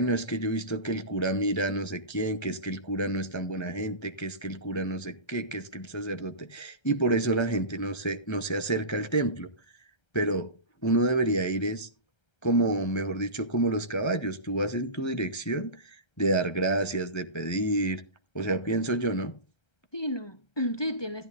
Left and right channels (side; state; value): right; late; 1.3 ms